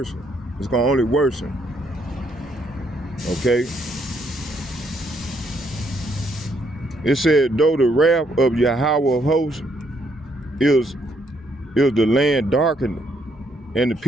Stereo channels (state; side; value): normal; both; correlation 0.72